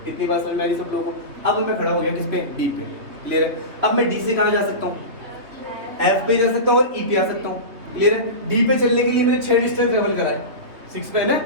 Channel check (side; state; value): left; late; 3.4 ms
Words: इतनी बात समझ में आ रही सब लोगों को? अब मैं खड़ा हो गया किस पे? डी पे। क्लियर है? अब मैं डी से कहाँ जा सकता हूँ? एफ पे जा सकता हूँ और ई पे आ सकता हूँ। क्लियर है? डी पे चलने के लिए मैंने 6 डिस्टेंस ट्रेवल करा है। 6 पे है ना,